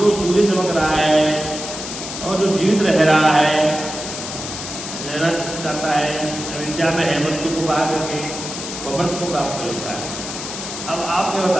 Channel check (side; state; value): left; noise; hiss, 8 dB below the sound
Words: सूर्य चमक रहा है और जो जीवित रह रहा है, रहना चाहता है, अविद्या में है, मृत्यु को पार करके वो अमृत को प्राप्त कर लेता है। अब आप क्या